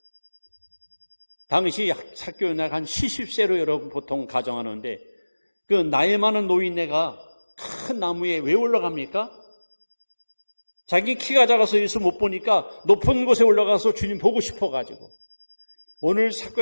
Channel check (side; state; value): both; inverted; correlation -1.00